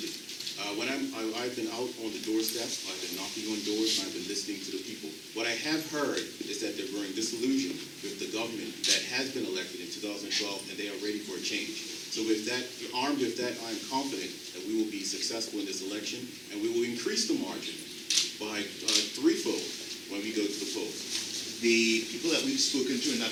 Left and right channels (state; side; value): identical; both; correlation 1.00